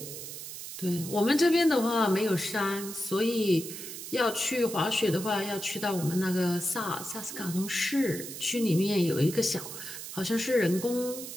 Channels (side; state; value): right; noise; hiss, 9 dB below the sound